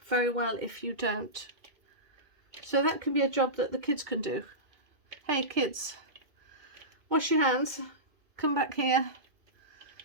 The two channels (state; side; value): late; left; 2.5 ms